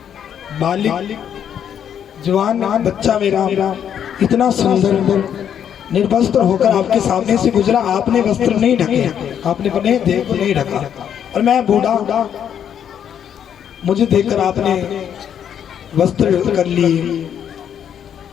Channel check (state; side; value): quieter; right; 9.0 dB